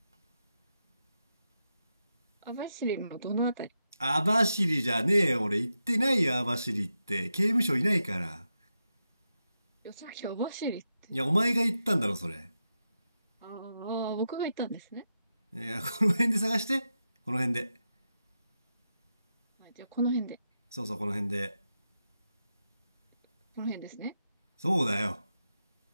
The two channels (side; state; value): both; inverted; correlation -0.88